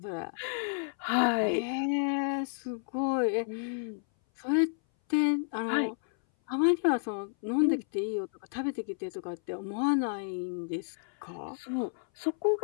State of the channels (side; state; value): right; silent; 57 dB below the other